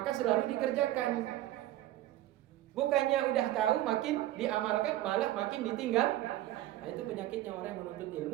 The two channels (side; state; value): left; quieter; 14.6 dB